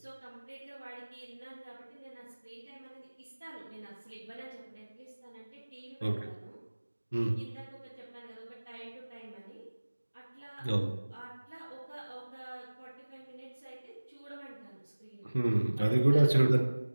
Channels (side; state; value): both; inverted; correlation -1.00